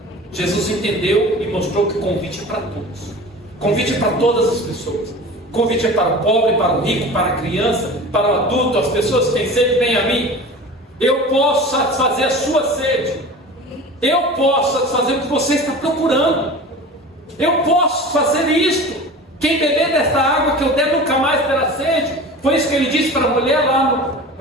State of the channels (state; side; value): normal; both; correlation 0.36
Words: Jesus entendeu e mostrou que o convite é para todos. O convite é para todas as pessoas. O convite é para o pobre, para o rico, para a criança, para o adulto. As pessoas que têm sede, venham a mim. Eu posso satisfazer a sua sede. Eu posso satisfazer o que você está procurando. Eu posso fazer isto. Quem beber desta água que eu der nunca mais terá sede. Foi isso que ele disse para a mulher lá